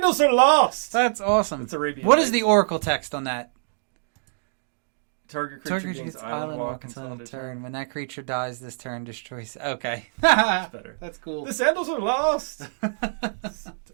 are lost! That's awesome. It's Arabian. What is the oracle text on that? Target creature gains island walk until end of turn. When that creature dies this turn, destroys... Okay. That's better. That's cool. The sandals are lost!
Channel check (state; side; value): silent; left; digital silence